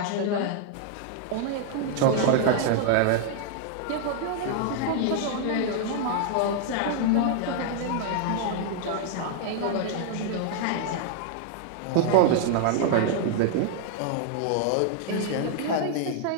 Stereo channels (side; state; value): both; different; correlation 0.00